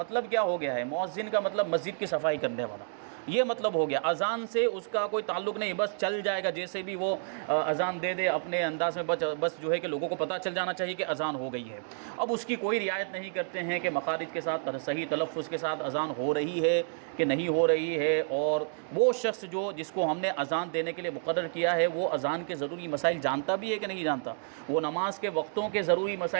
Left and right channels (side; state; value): left; silent; digital silence